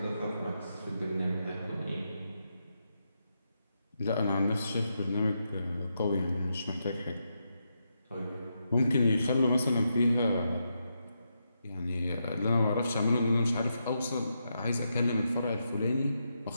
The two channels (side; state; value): both; inverted; correlation -0.83